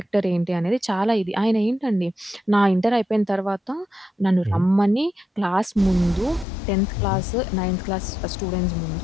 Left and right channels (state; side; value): drops out; right; at 6.5 s